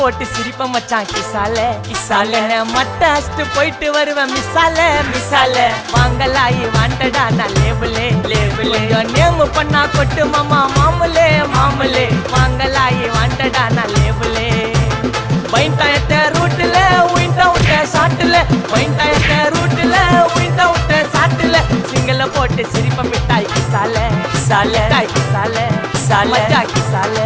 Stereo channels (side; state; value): both; identical; correlation 1.00